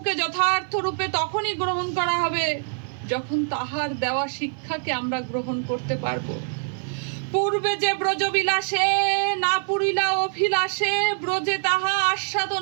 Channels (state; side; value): silent; left; 55 dB below the other